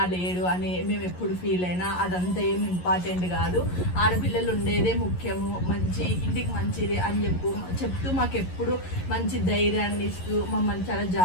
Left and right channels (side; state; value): right; late; 11 ms